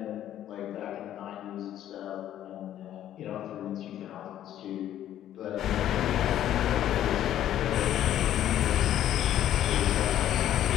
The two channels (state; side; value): quieter; right; 11.7 dB